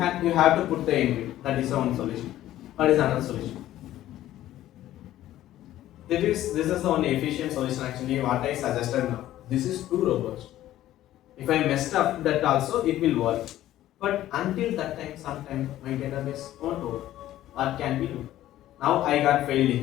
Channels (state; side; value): quieter; right; 13.7 dB